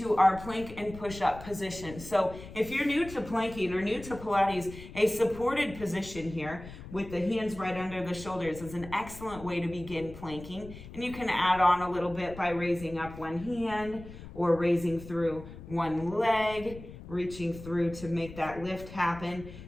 our plank and push-up position. So if you're new to planking or new to Pilates, a supported position here with the hands right under the shoulders is an excellent way to begin planking. And you can add on a little bit by raising up one hand or raising through one leg, reaching through to make that lift happen.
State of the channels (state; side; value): noise; left; rumble, 14 dB below the sound